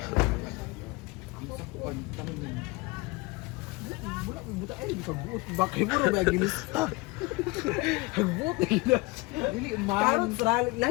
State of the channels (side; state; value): right; quieter; 23.6 dB